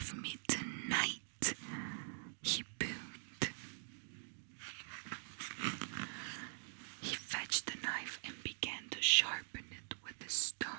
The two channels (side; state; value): left; silent; digital silence